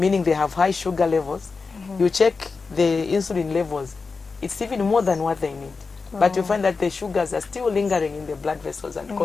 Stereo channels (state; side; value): quieter; right; 4.5 dB